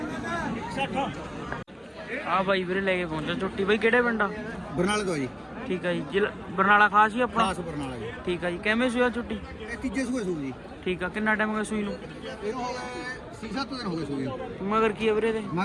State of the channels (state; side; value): identical; both; correlation 1.00